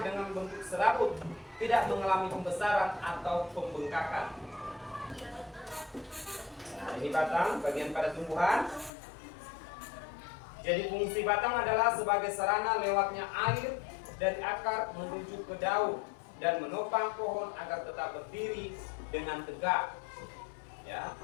dengan bentuk serabut, tidak mengalami pembesaran atau pembengkakan. Nah, ini batang, bagian pada tumbuhan. Jadi fungsi batang adalah sebagai sarana lewatnya air dari akar menuju ke daun dan menopang pohon agar tetap berdiri dengan tegak. Ya.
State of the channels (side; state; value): right; drops out; at 8.9 s